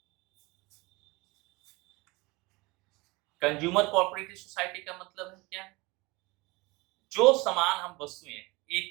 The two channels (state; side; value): quieter; left; 24.0 dB